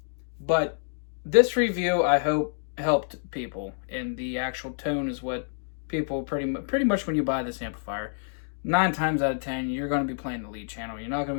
this review, I hope, helped people, and the actual tone is what people pretty much when you buy this amplifier, 9 times out of 10 you're going to be playing the lead channel. You're not going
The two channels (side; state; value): right; silent; digital silence